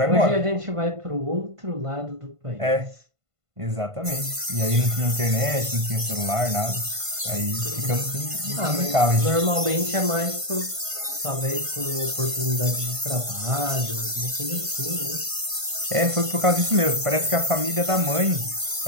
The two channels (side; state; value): left; late; 1.5 ms